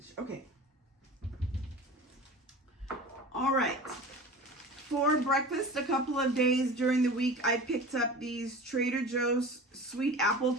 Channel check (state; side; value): normal; both; correlation 0.36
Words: Okay. All right. For breakfast, a couple of days during the week, I picked up these Trader Joe's sweet apple